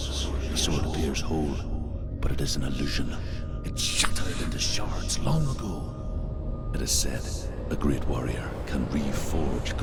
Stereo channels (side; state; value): both; identical; correlation 1.00